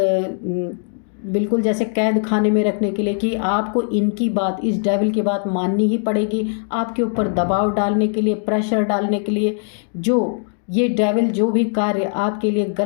बिल्कुल जैसे कैद खाने में रखने के लिए, कि आपको इनकी बात, इस डेविल की बात माननी ही पड़ेगी, आपके ऊपर दबाव डालने के लिए, प्रेशर डालने के लिए। जो ये डेविल जो भी कार्य आपके लिए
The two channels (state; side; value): silent; right; 60 dB below the other